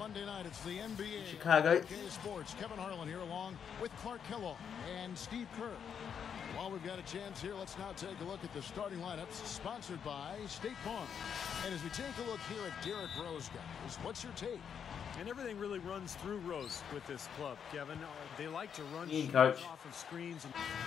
night. It's the NBA. Chicago. Sports. Kevin Harlan here along with Clark Kellogg and Steve Kerr. While we've got a chance here, let's now take a look at the starting lineups sponsored by State Farm. And as we take a look here at Derrick Rose, guys, what's your take? And everything really runs through Rose with this club, Kevin. They like to run coach. Off of screens.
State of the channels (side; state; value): right; quieter; 7.6 dB